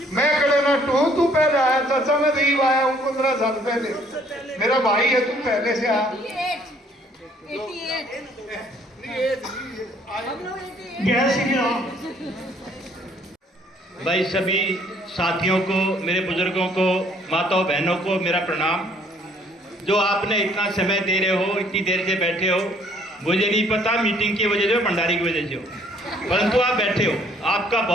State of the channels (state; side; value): normal; both; correlation 0.62